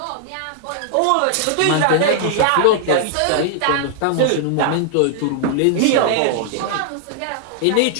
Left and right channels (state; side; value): different; both; correlation 0.00